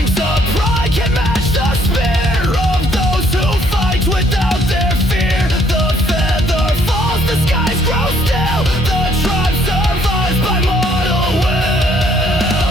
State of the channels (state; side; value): normal; both; correlation 0.65